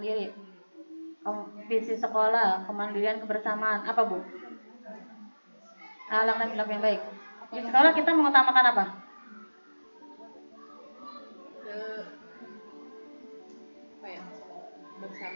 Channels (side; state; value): both; inverted; correlation -1.00